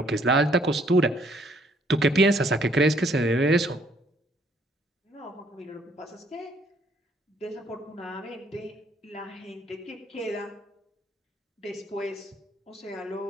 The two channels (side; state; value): both; normal; correlation 0.65